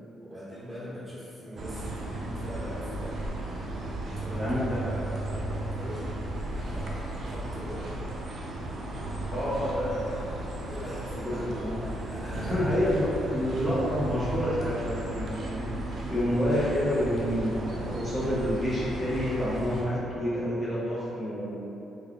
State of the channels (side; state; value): both; normal; correlation 0.77